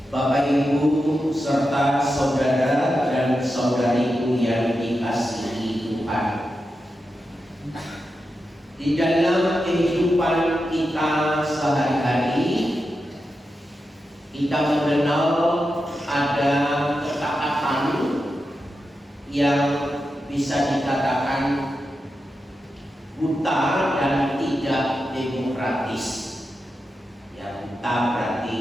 Bapak Ibu serta saudara dan saudariku yang dikasihi Tuhan, di dalam kehidupan kita sehari-hari kita mengenal ada ketaatan yang bisa dikatakan buta dan tidak demokratis. Yang buta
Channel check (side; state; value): both; normal; correlation 0.89